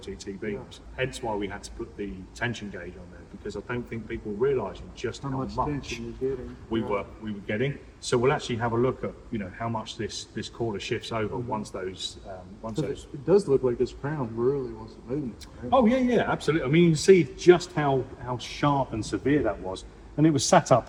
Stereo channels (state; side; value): identical; both; correlation 1.00